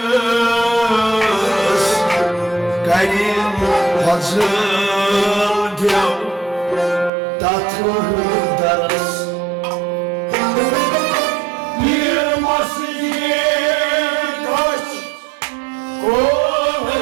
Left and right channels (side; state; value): left; drops out; at 7.1 s